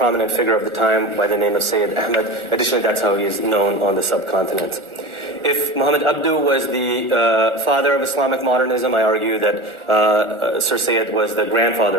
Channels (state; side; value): late; left; 1.4 ms